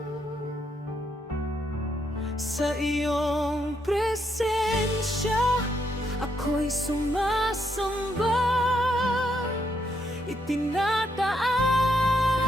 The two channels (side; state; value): both; normal; correlation 0.77